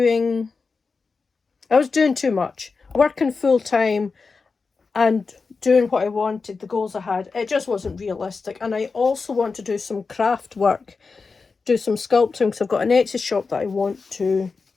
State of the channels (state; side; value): quieter; right; 4.6 dB